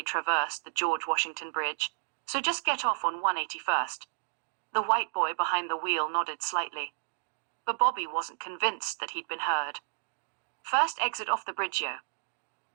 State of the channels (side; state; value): left; silent; digital silence